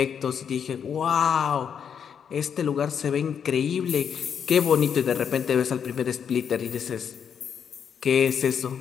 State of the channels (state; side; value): quieter; right; 7.6 dB